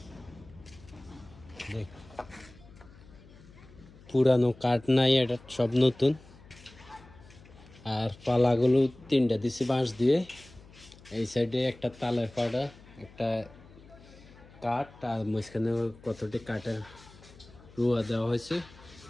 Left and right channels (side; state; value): left; noise; hum, 22 dB below the sound